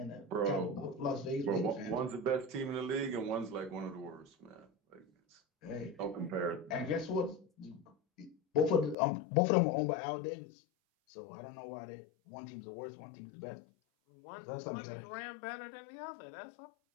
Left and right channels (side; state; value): right; drops out; at 9.0 s